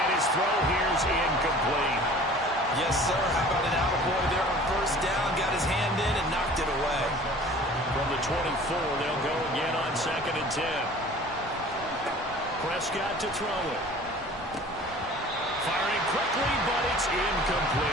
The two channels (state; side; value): normal; both; correlation 0.46